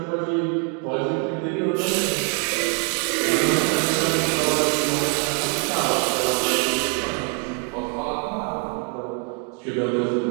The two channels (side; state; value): left; quieter; 37.7 dB